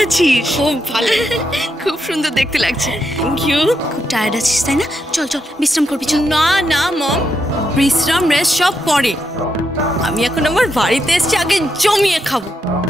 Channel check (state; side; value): normal; both; correlation 0.82